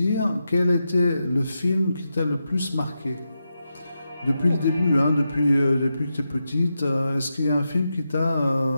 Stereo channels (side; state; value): both; inverted; correlation -0.87